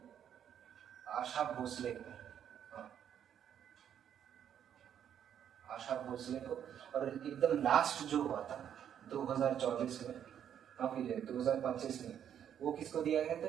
आशा भोसले को। आशा भोसले को। और एकदम लास्ट जो हुआ था 2024 में, फिर 2025 में, वो किसको दिया गया था?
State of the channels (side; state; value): left; quieter; 9.3 dB